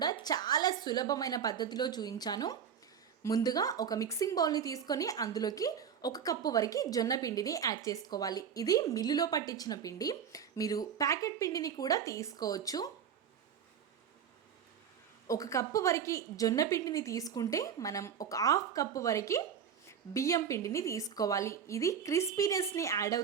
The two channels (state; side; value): quieter; left; 7.8 dB